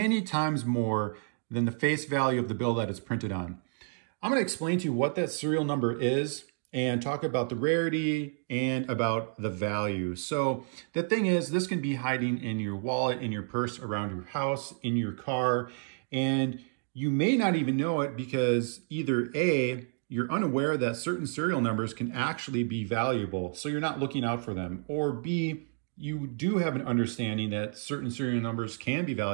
times more than the face value of the bill that it's printed on. I'm going to explain to you what that serial number is and talk about the rarity and about the value. So the thing is, this can be hiding in your wallet, in your purse, around your house, in your car, and you may not even know it because either A, you're unaware that certain serial numbers can actually be valuable, so you're not looking out for them. Or B, you do have an understanding that certain serial numbers can be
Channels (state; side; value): silent; left; 58 dB below the other